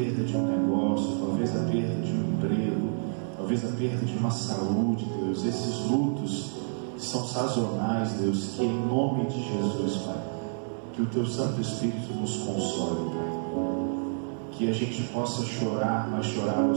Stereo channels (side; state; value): left; silent; digital silence